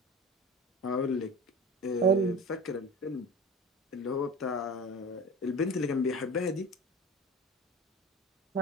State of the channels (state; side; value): normal; both; correlation 0.35